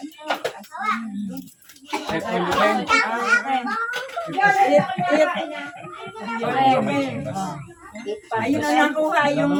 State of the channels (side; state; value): both; identical; correlation 1.00